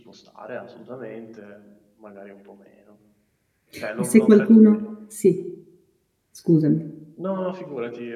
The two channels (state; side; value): identical; both; correlation 1.00